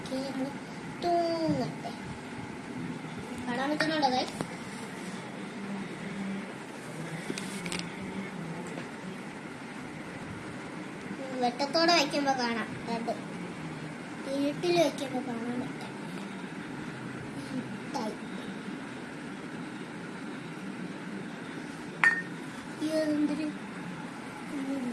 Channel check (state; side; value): identical; both; correlation 1.00